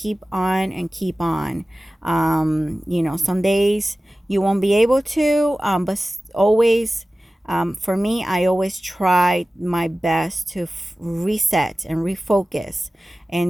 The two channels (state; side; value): normal; both; correlation 0.96